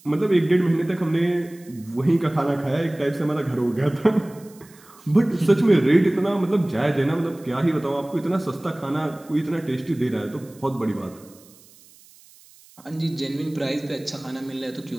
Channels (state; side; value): noise; right; hiss, 25 dB below the sound